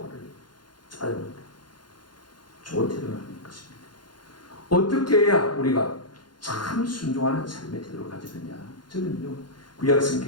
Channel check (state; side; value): late; right; 0.71 ms